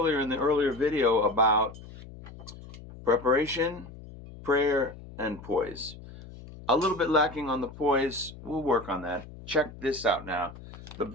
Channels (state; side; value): noise; left; hum, 16 dB below the sound